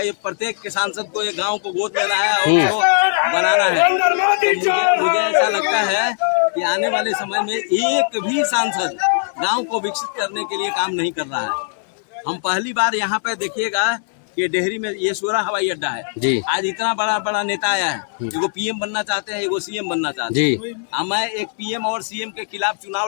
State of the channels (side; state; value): right; silent; 60 dB below the other